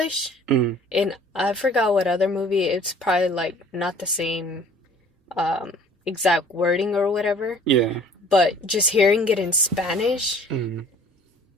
And I forgot what other movie. It's probably like not the same exact wording or whatever. Yeah. But just hearing it in Spanish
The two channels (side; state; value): both; normal; correlation 0.51